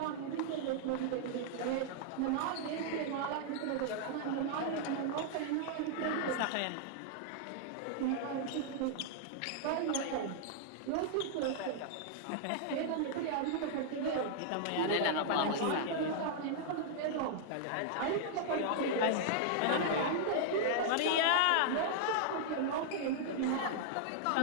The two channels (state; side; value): different; both; correlation -0.01